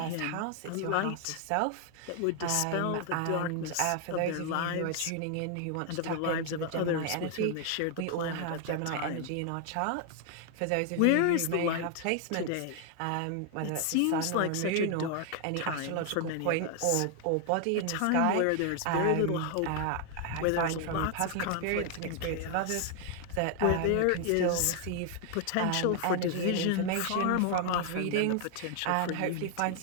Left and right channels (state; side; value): different; both; correlation 0.00